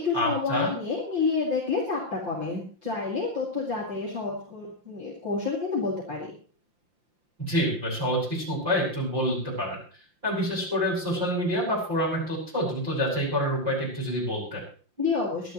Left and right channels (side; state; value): left; late; 5.8 ms